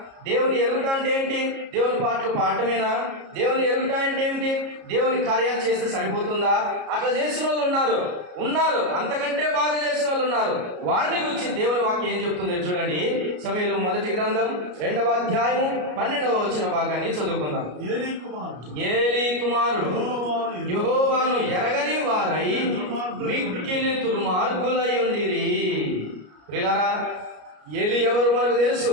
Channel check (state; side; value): late; left; 33 ms